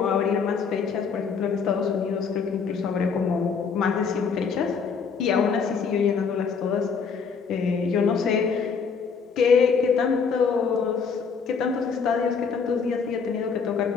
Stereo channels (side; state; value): right; quieter; 5.8 dB